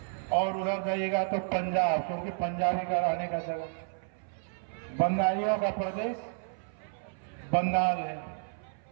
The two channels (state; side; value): silent; left; 57 dB below the other